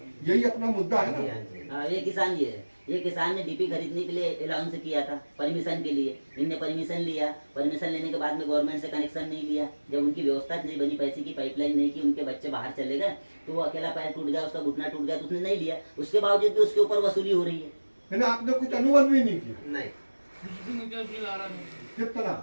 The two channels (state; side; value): inverted; both; correlation -1.00